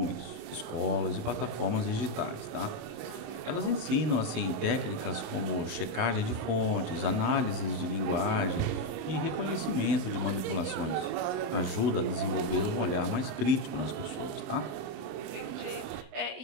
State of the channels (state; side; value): late; left; 28 ms